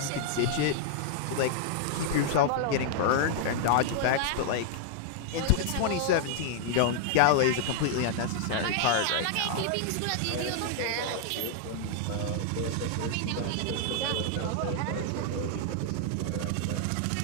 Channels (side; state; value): both; different; correlation 0.00